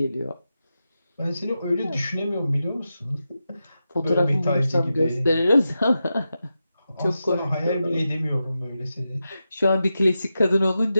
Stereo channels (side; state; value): both; inverted; correlation -0.90